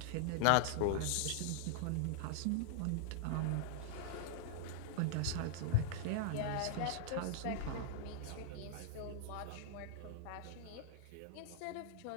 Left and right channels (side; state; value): both; different; correlation -0.01